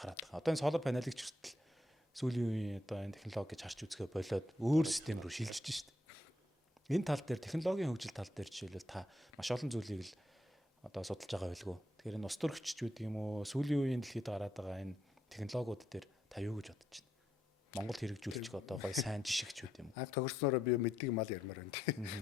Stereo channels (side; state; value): both; normal; correlation 0.79